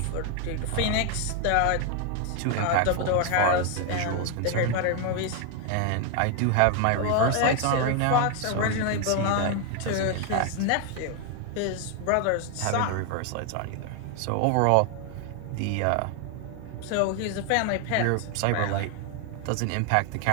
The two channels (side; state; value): both; different; correlation 0.01